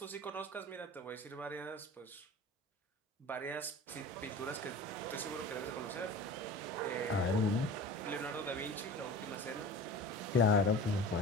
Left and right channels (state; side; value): normal; both; correlation 0.37